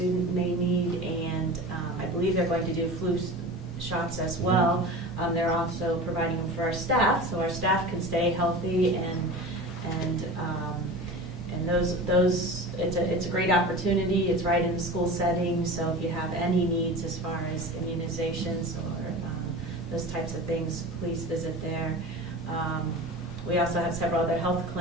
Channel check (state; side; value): normal; both; correlation 0.33